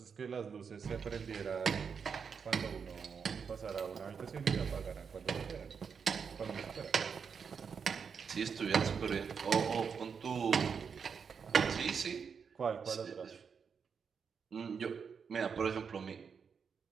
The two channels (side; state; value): left; quieter; 6.3 dB